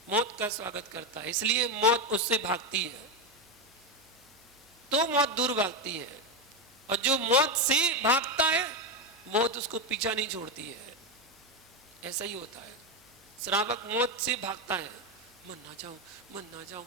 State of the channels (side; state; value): both; normal; correlation 0.09